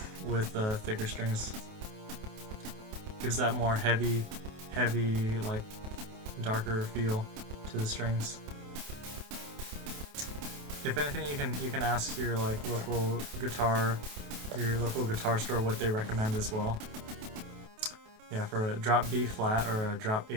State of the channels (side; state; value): left; late; 28 ms